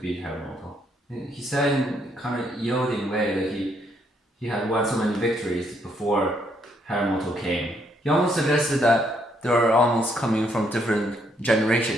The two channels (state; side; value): normal; both; correlation 0.72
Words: Harimoto. And he said in kind of yielding way that he had won so many victories before Harimoto came. He almost suggested that they are almost coming from different